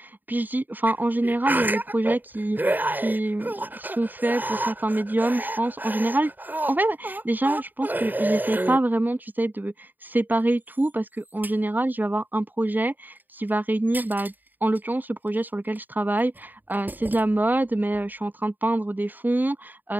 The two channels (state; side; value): late; left; 0.088 ms